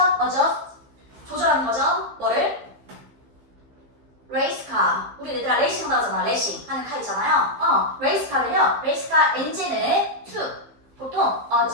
adjust. 조절하는 거죠. 뭐를? 레이스카. 우리 얘들아 레이싱 나오잖아. 레이싱 하는 카 있잖아요. 레이스카를요. 레이스카 엔진을 to. 보통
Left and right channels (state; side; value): late; left; 15 ms